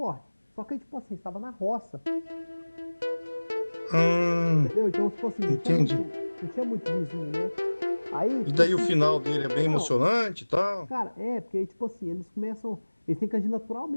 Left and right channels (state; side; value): inverted; both; correlation -1.00